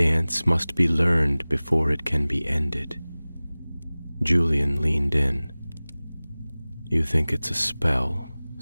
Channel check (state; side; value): inverted; both; correlation -0.99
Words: must be learned before it can be ended. Julian leaned in. You think it's a spell,